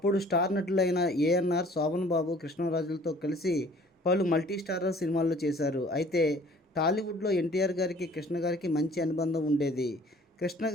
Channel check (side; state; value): both; normal; correlation 0.53